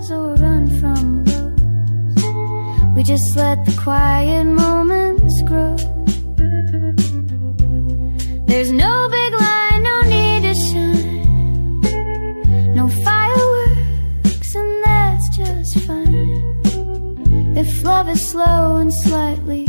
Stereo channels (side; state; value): both; inverted; correlation -1.00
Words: or run from lows, we just let the quiet moments grow. There's no big line, no need to shine, no fireworks, and that's just fine. If love is slow and slightly